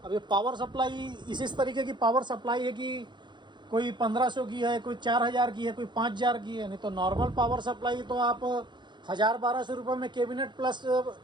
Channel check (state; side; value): late; left; 0.22 ms